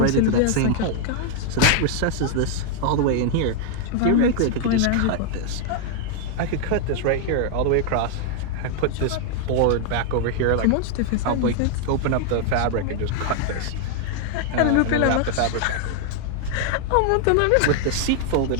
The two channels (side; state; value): both; different; correlation 0.00